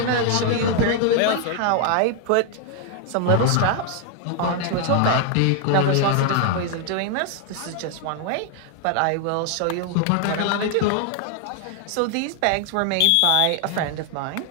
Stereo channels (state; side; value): different; both; correlation 0.00